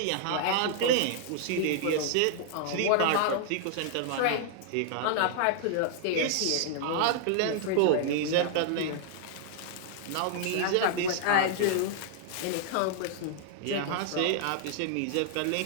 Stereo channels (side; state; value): both; different; correlation -0.01